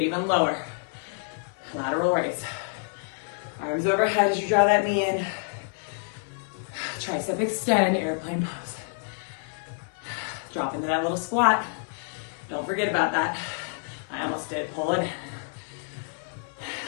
even lower. Lateral raise. Arms overhead as you draw that knee in. Tricep extend, airplane pose. Drop into that little squat. Don't forget about that. I almost did, pull it in.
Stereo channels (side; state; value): right; silent; 58 dB below the other